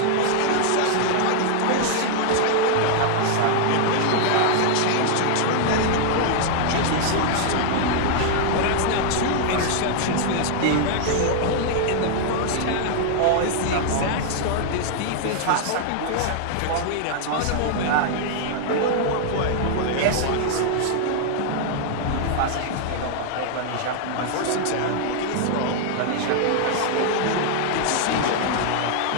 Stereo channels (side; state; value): both; different; correlation -0.01